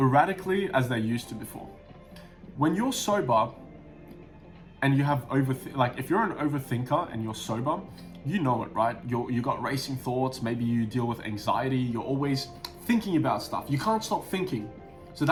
as they used to before. When you're sober and you have if you're an overthinker and you're sober, you know it, right? You got racing thoughts, maybe you deal with anxiety, you're always thinking about stuff. You can't stop thinking. So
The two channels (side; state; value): both; identical; correlation 1.00